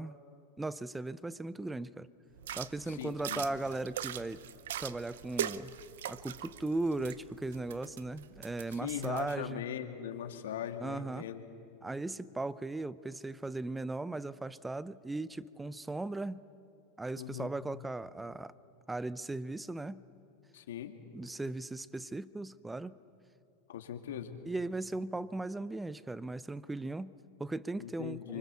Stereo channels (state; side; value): normal; both; correlation 0.66